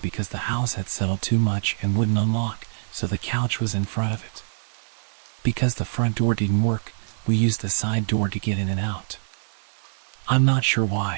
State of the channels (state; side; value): silent; left; digital silence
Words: the house had settled too much and wouldn't unlock, so the couch was in front of it. Because the front door didn't work, we used the side door to get in and out. I'm not sure